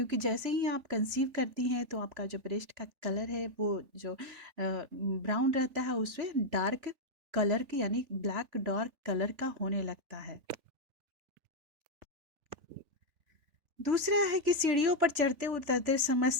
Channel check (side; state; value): left; late; 3.4 ms